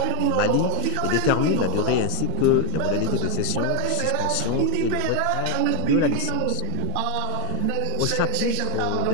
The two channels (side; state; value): both; different; correlation 0.01